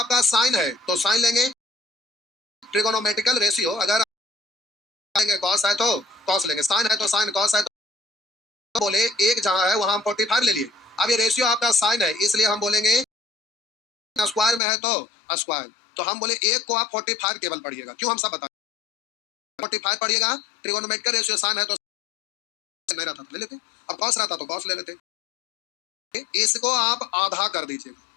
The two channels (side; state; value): right; drops out; at 14.6 s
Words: साइन है तो साइन लेंगे, ट्रिगोनोमेट्रिकल रेशियो अगर लेंगे कॉस है तो कॉस लेंगे, साइन है तो साइन, कॉस है तो बोले एक जहां है वहां हम 45 ले लिए। अब ये रेशियो आपका साइन है इसलिए हम बोलेंगे स्क्वायर में है तो स्क्वायर, तो हम बोले एक को आप 45 केवल पढ़िएगा, क्यों हम सब बताएं 45 पढ़िएगा, ट्रिगोनोमेट्रिकल रेशियो साइन है तो नहीं रहता ले लेते, अब कॉस रहता तो कॉस ले लेते, इसको आप आधा कर दीजिए,